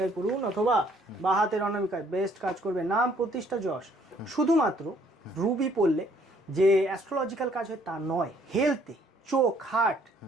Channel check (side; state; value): both; normal; correlation 0.63